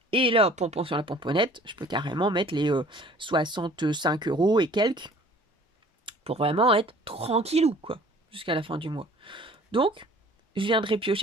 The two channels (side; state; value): both; normal; correlation 0.51